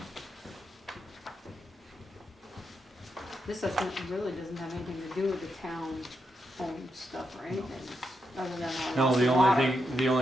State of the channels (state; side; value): normal; both; correlation 0.83